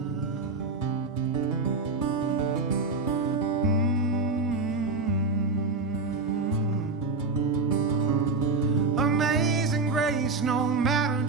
Amazing grace, no matter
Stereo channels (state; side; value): quieter; left; 3.9 dB